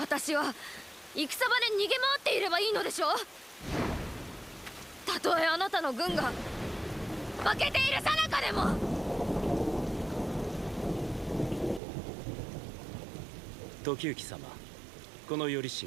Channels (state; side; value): drops out; left; at 11.8 s